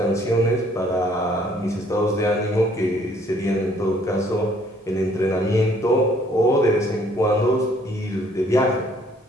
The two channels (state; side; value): normal; both; correlation 0.62